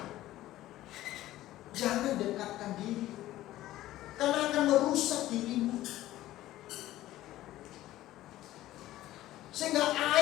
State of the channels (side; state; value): right; quieter; 15.1 dB